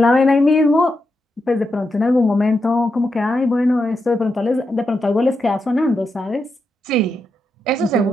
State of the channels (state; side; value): normal; both; correlation 0.85